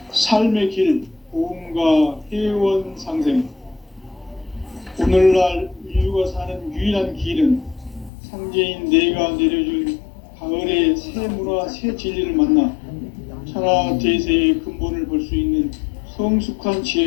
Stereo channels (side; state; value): right; drops out; at 8.1 s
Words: 삶의 길, 보험과 회원 상생. 오늘날 인류가 사는 유일한 길은 상제인 내가 내려준 가을의 새 문화, 새 진리를 만나 천하 대세의 근본을 볼 수 있는 성숙한